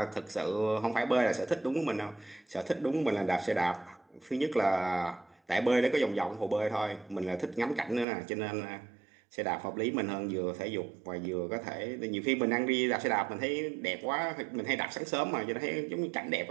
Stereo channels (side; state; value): left; drops out; at 8.1 s